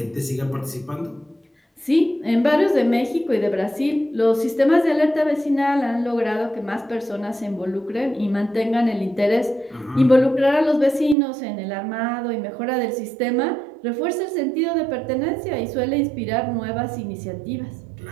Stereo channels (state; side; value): drops out; left; at 11.2 s